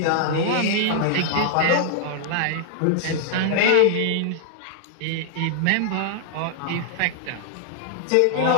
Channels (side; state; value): both; different; correlation -0.01